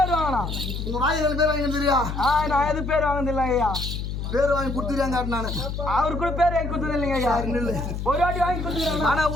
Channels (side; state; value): left; noise; hum, 5 dB below the sound